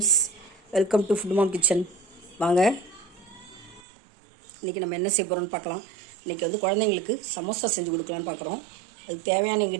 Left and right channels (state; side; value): drops out; left; at 3.8 s